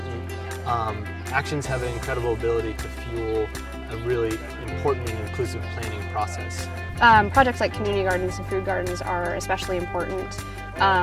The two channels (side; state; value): both; identical; correlation 1.00